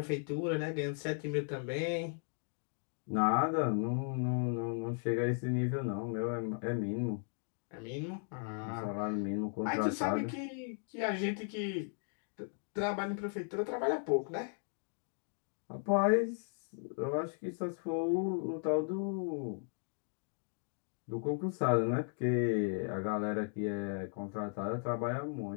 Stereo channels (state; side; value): silent; right; 53 dB below the other